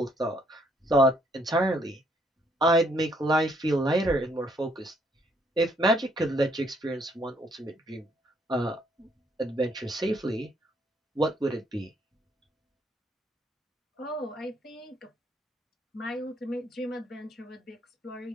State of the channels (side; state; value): both; normal; correlation 0.69